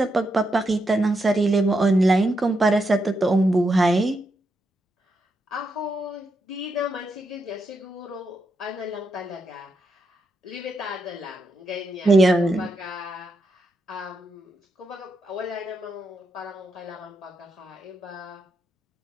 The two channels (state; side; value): normal; both; correlation 0.83